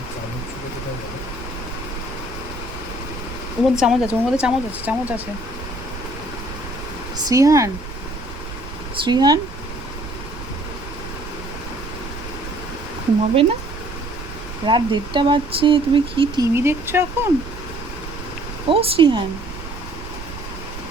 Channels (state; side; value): noise; right; rumble, 10 dB below the sound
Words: ওর মধ্যে চামচ আছে, ওর মধ্যে চামচ আছে, চামচ আছে। শ্রীহান, শ্রীহান, ঘুমাবে না? রাত 1:30 বাজছে, তুমি কি টিভি দেখছো এখন? ও শ্রীহান,